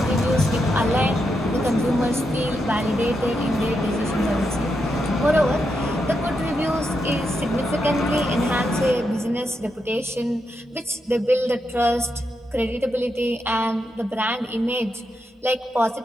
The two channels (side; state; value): both; normal; correlation 0.84